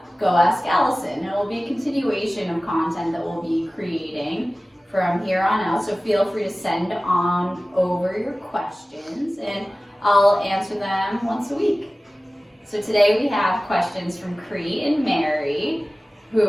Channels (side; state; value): both; normal; correlation 0.97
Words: Go Ask Allison. It will be a continuation of content that we'll be creating from here on out. So feel free to send on over your questions and I'll answer them once a week. So today we have questions from Cree and Mary,